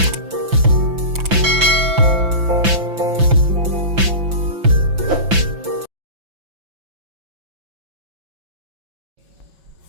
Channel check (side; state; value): left; late; 5.9 ms